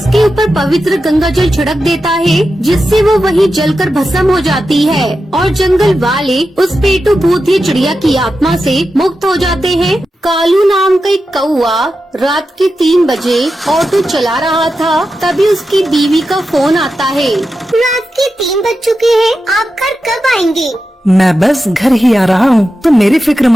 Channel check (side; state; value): both; normal; correlation 0.90